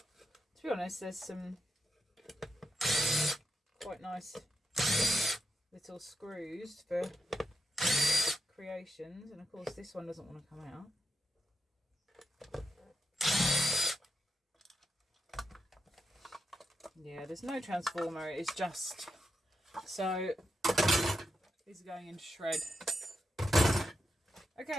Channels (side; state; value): both; normal; correlation 0.86